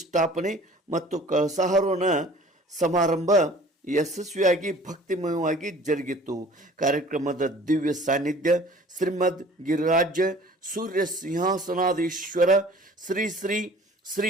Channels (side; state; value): both; normal; correlation 0.48